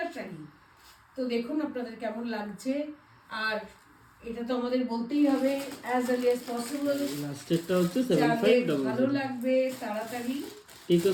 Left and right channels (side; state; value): both; identical; correlation 1.00